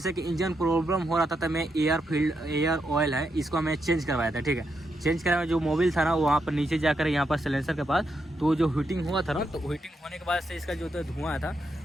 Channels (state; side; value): normal; both; correlation 0.82